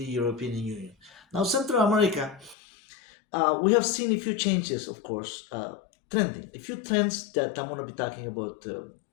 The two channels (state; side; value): drops out; right; at 2.6 s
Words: European Union. Now, Central America, we have seen a few changes, of course, trending, a few trends that I'm going to be talking about